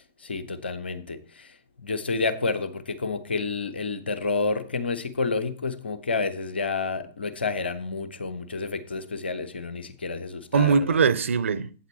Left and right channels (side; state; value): both; inverted; correlation -0.57